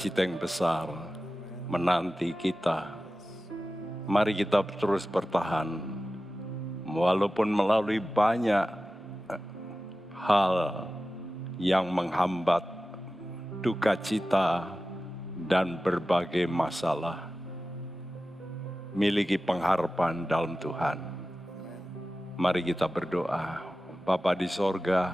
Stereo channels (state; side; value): normal; both; correlation 0.95